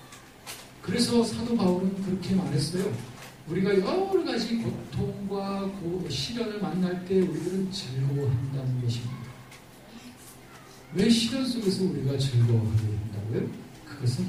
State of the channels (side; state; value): both; identical; correlation 1.00